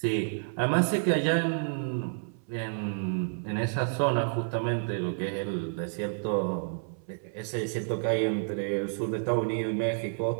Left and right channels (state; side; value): silent; left; 58 dB below the other